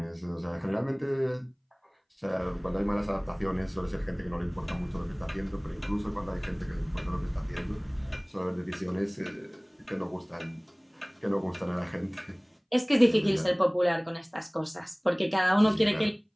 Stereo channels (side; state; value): both; identical; correlation 1.00